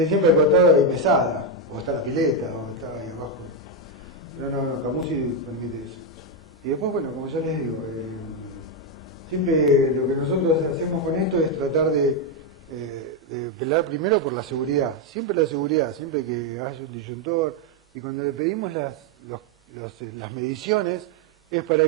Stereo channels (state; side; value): normal; both; correlation 0.04